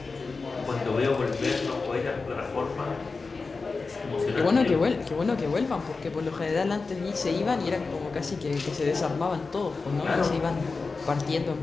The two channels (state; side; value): quieter; right; 4.2 dB